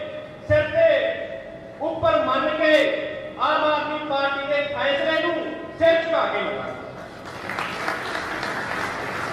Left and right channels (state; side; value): identical; both; correlation 1.00